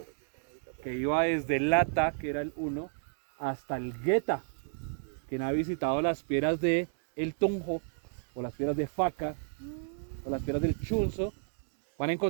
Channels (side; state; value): left; silent; digital silence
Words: que iba desde el Lata, que era el 1, hasta el Geta. Quien ha visitado las piedras de El Tunjo, o las piedras de Faca, o las piedras del Chunzo, van a